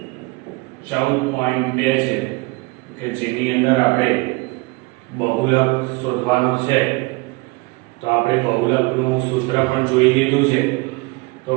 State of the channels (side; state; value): left; quieter; 24.9 dB